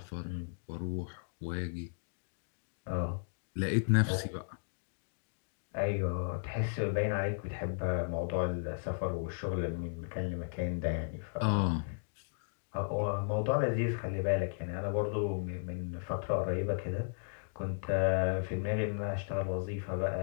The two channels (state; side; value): silent; right; digital silence